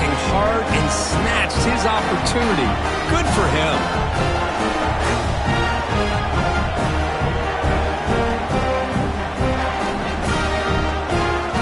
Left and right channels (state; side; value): identical; both; correlation 1.00